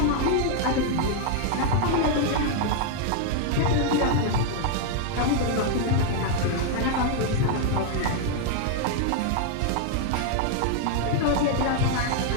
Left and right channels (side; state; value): both; different; correlation 0.00